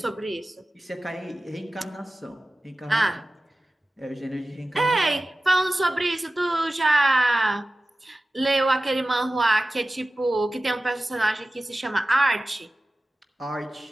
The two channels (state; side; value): normal; both; correlation 0.95